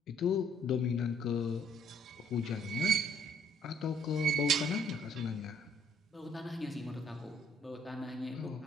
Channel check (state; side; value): normal; both; correlation 0.63